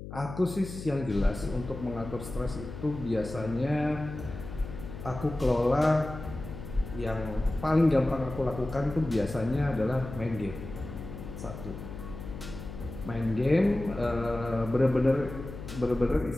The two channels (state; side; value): noise; left; hum, 10 dB below the sound